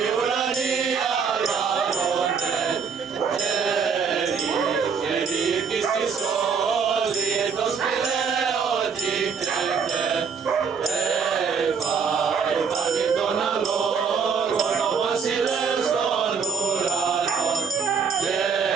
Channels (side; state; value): left; quieter; 5.8 dB